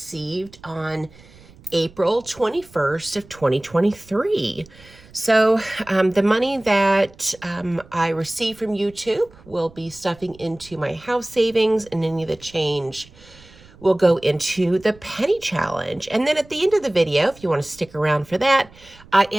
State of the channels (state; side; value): noise; right; rumble, 24 dB below the sound